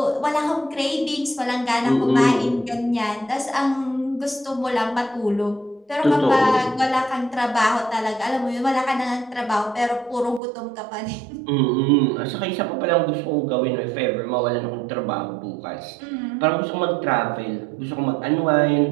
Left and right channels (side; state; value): left; drops out; at 10.4 s